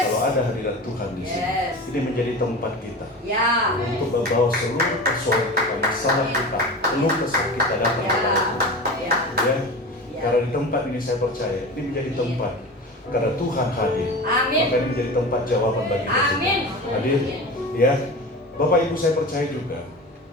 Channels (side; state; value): both; normal; correlation 0.31